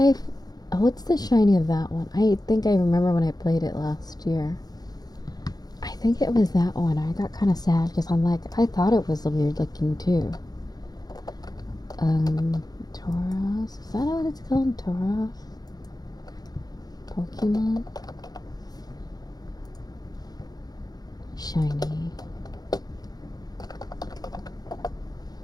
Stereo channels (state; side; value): late; right; 0.19 ms